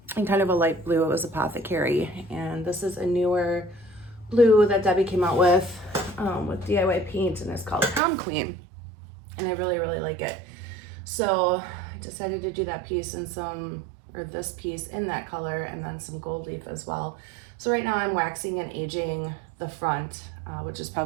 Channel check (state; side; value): drops out; left; at 8.0 s